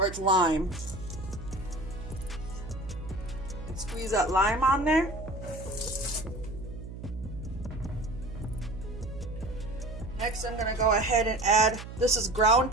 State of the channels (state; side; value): noise; right; hum, 11 dB below the sound